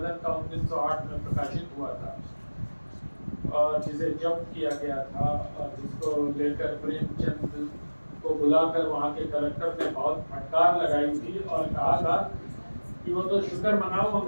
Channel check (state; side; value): inverted; both; correlation -1.00